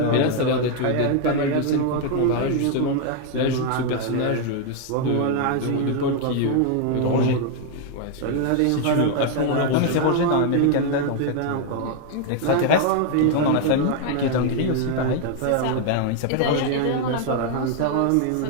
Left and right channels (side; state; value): both; different; correlation 0.00